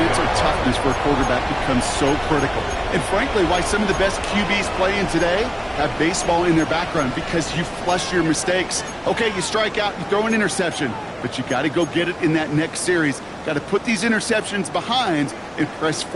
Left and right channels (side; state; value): both; identical; correlation 1.00